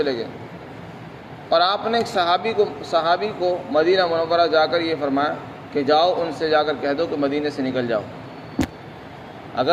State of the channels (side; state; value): both; identical; correlation 1.00